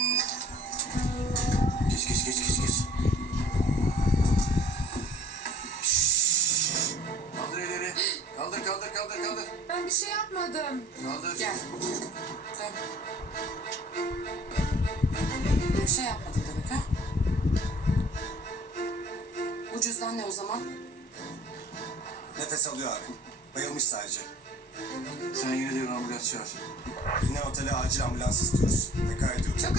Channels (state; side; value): late; right; 1.1 ms